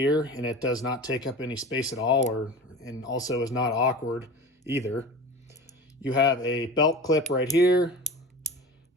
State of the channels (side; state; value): both; normal; correlation 0.33